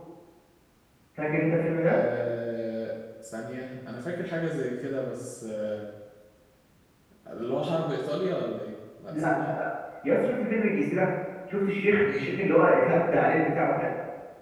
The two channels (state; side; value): identical; both; correlation 1.00